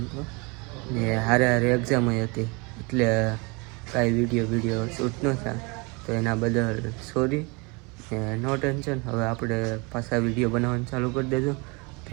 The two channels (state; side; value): quieter; left; 28.9 dB